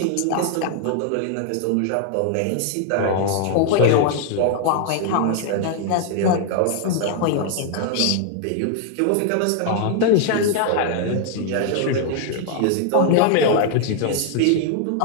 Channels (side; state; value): both; different; correlation 0.00